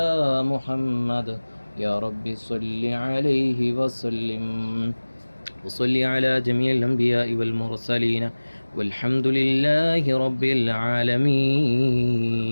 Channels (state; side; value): inverted; both; correlation -1.00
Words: محمد يا رب صل عليه وسلم. وصل على جميع الأنبياء والمرسلين والحمد لله رب